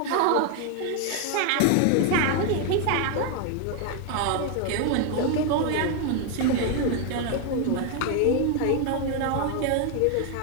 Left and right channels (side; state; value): both; different; correlation 0.01